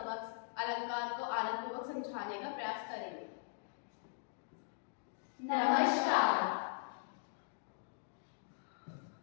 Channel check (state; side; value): silent; right; digital silence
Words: अलंकार को आनंदपूर्वक समझाने का प्रयास करेंगे। नमस्कार।